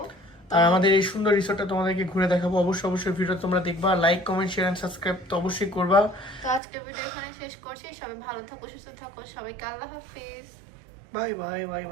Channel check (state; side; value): drops out; left; at 6.6 s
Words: আর আমাদের এই সুন্দর রিসোর্টটা তোমাদেরকে ঘুরে দেখাবো। অবশ্যই ভিডিও তোমরা দেখবা, like comment share and subscribe তো অবশ্যই করবা। তো আজকের ভিডিও এখানে শেষ করছি। সবাই ভালো থাকো, সুস্থ থাকো, সবাইকে আল্লাহ হাফেজ। Bye bye bye